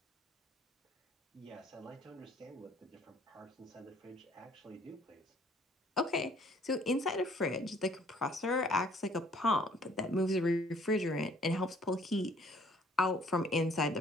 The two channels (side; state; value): both; normal; correlation 0.59